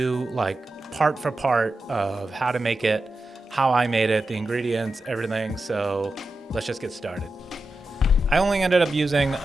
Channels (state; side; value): normal; both; correlation 0.91